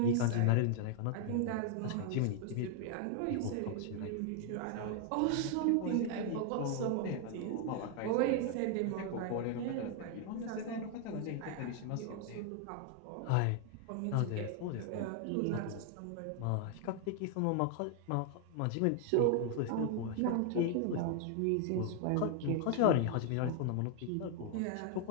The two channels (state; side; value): different; both; correlation 0.00